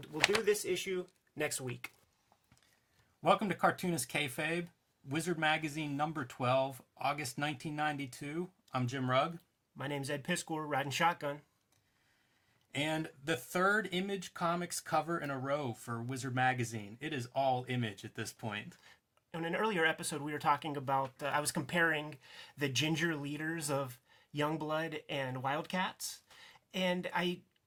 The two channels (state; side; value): identical; both; correlation 1.00